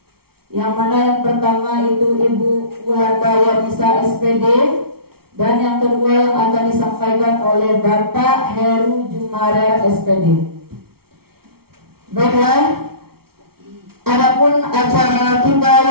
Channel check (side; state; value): left; late; 0.94 ms